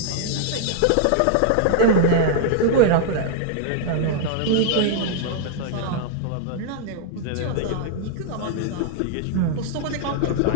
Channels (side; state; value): both; different; correlation -0.01